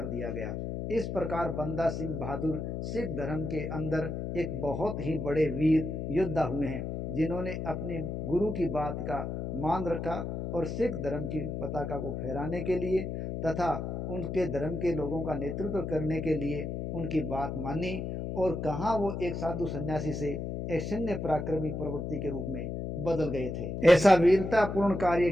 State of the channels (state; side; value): noise; left; hum, 4 dB below the sound